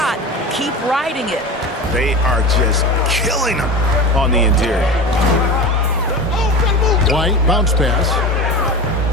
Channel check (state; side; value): normal; both; correlation 0.29